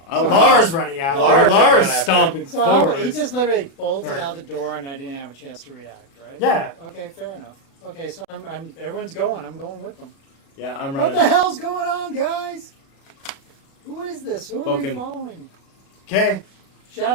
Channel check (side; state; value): right; late; 36 ms